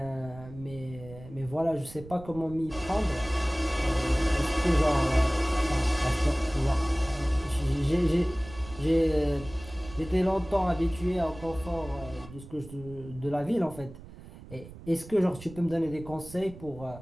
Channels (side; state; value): right; noise; rumble, 16 dB below the sound